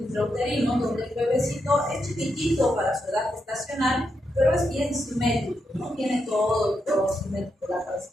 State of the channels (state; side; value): normal; both; correlation 0.83